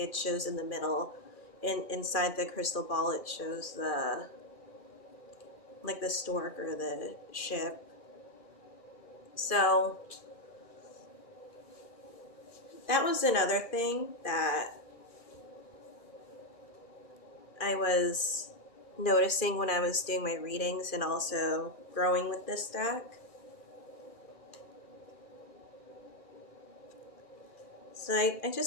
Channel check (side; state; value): left; late; 1.6 ms